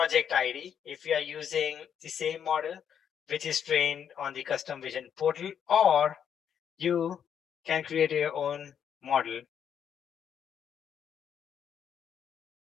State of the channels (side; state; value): right; quieter; 8.4 dB